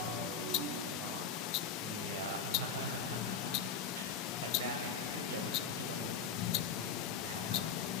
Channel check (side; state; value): right; quieter; 6.3 dB